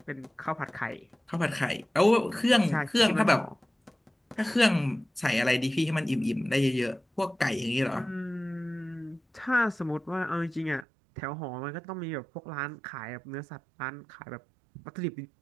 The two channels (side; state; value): left; drops out; at 10.9 s